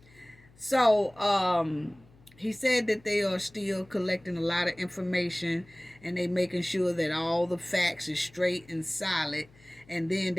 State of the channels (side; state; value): left; noise; hum, 27 dB below the sound